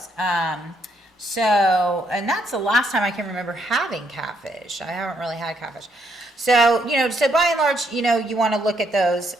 And that's the last time I can remember having catfish. I haven't really had catfish. So by and large, you want to look at those.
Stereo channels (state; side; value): normal; both; correlation 0.74